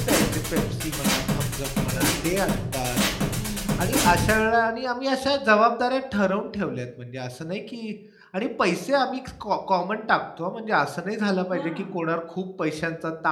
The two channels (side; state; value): both; identical; correlation 1.00